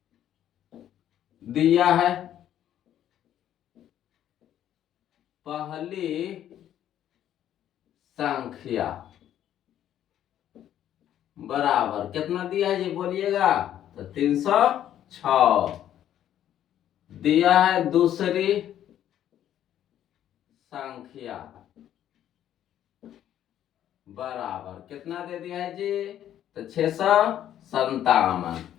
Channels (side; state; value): right; quieter; 11.1 dB